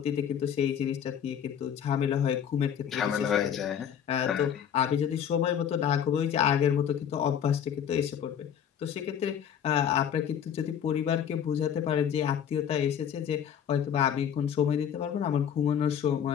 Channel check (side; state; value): right; quieter; 8.7 dB